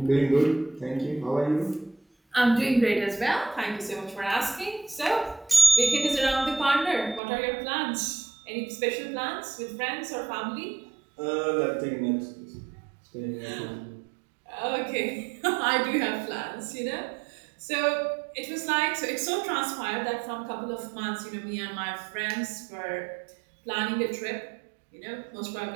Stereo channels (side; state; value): left; drops out; at 7.2 s